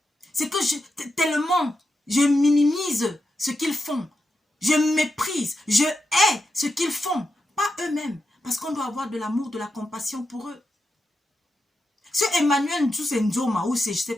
C'est que tellement je minimise ce qu'ils font. Je méprise. Je hais ce qu'ils font. Pas eux-mêmes. Parce qu'on doit avoir de l'amour, de la compassion pour eux. Ce Emmanuel Nzoma ou c'est je ne sais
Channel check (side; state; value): both; normal; correlation 0.87